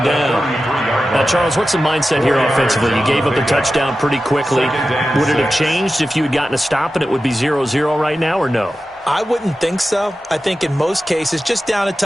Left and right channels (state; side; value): normal; both; correlation 0.93